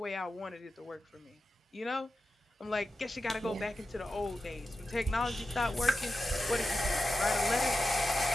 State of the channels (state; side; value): normal; both; correlation 0.92